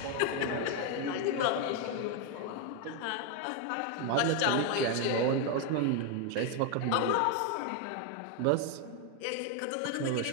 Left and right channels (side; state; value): both; different; correlation 0.01